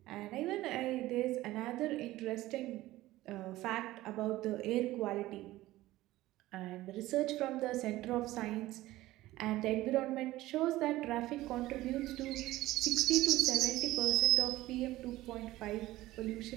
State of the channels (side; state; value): left; quieter; 16.8 dB